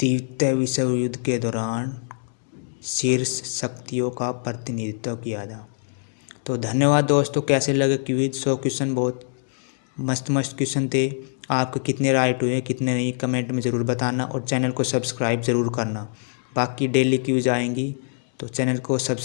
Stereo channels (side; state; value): right; silent; digital silence